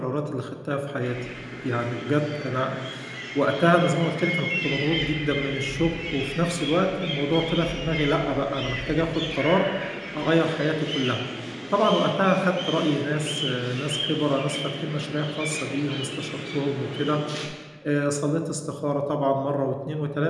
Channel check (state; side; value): identical; both; correlation 1.00